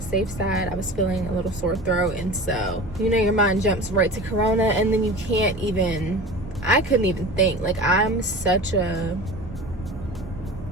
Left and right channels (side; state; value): both; normal; correlation 0.35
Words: safe side. I was feeling a little sore throat, and so, you know, your mind jumps right to corona, and then I couldn't even think. Like, I'm such a,